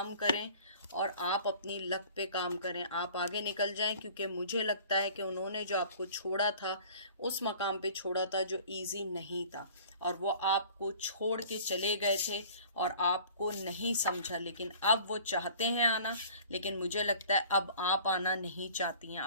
करें और आप अपनी लक पे काम करें, आप आगे निकल जाएं। क्योंकि मुझे लगता है कि उन्होंने जो आपको छोड़ा था उस मकाम पे छोड़ा था जो इजी नहीं था, और वो आपको छोड़ के चले गए थे और आपको नहीं समझा। लेकिन अब वो चाहते हैं आना, लेकिन मुझे लगता है अब आप आना नहीं चाहती हैं।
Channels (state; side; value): inverted; both; correlation -0.47